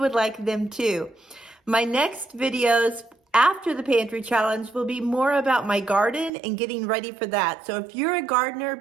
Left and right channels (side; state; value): left; drops out; at 6.3 s